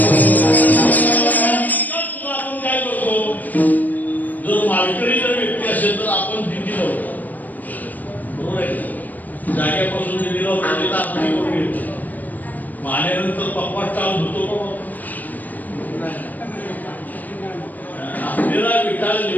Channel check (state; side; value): late; right; 0.083 ms